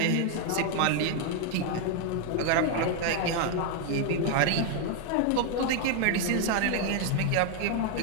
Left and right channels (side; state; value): both; different; correlation 0.00